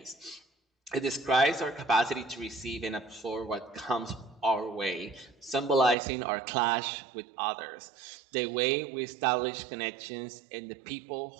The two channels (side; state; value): left; drops out; at 6.0 s